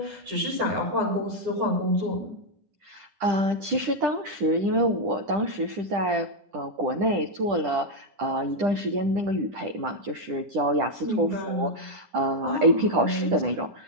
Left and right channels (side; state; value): left; late; 10 ms